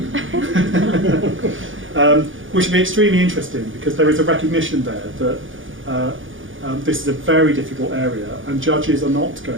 Which would be extremely interesting because there is a recognition there that this is a very difficult area and judges are not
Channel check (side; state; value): left; late; 0.57 ms